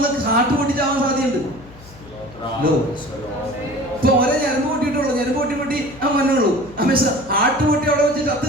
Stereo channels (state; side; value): noise; left; hum, 21 dB below the sound